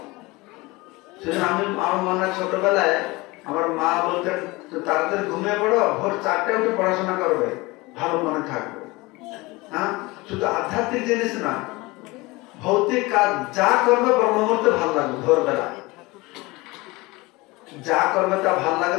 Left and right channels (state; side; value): quieter; right; 22.7 dB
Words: সেজন্য আমার মনে হয় ছোটবেলায় আমার মা বলতেন তাড়াতাড়ি ঘুমিয়ে পড়ো, ভোর 4টায় উঠে পড়াশোনা করবে, ভালো মনে থাকবে। হ্যাঁ, শুধু আধ্যাত্মিক জিনিস না, ভৌতিক কাজ যা করবে ব্রহ্ম মুহূর্তে ভালো লাগবে। ভোরবেলা যা করবে তা ভালো লাগে,